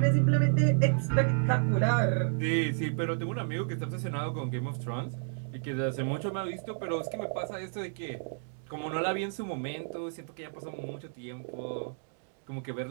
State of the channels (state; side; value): silent; left; digital silence